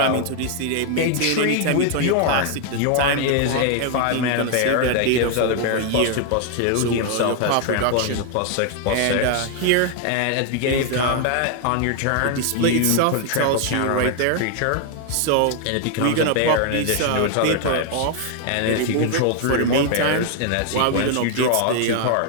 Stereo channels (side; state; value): both; different; correlation 0.00